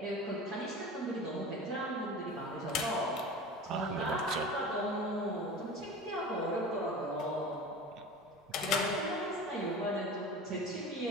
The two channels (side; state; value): both; normal; correlation 0.34